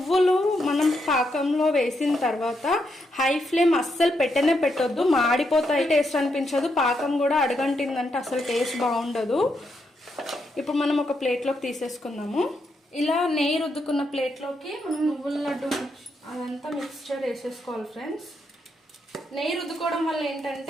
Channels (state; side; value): normal; both; correlation 0.80